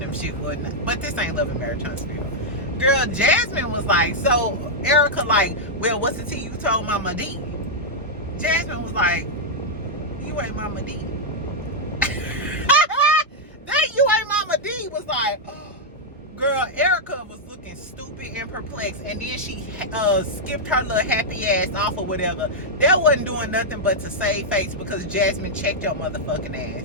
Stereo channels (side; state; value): both; normal; correlation -0.04